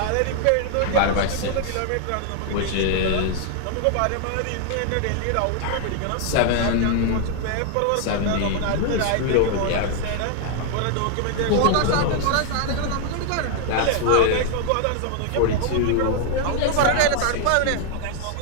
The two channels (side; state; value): both; different; correlation 0.00